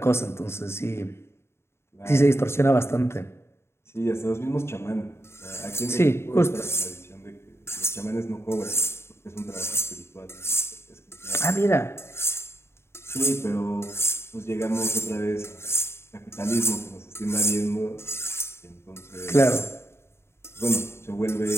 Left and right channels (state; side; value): late; right; 0.12 ms